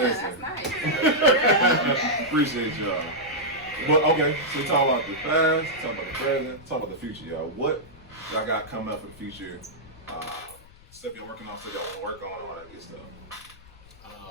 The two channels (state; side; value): noise; left; rumble, 24 dB below the sound